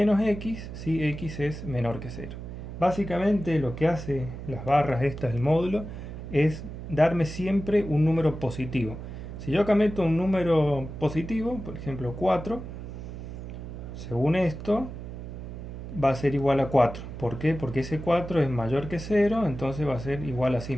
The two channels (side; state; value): right; noise; hum, 9 dB below the sound